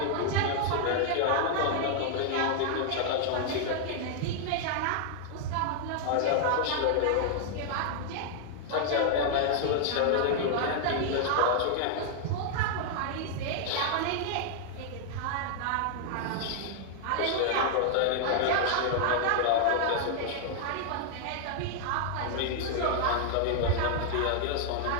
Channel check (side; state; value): both; different; correlation -0.01